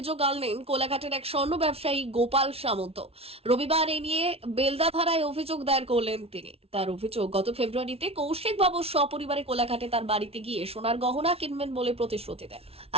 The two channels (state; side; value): late; left; 0.29 ms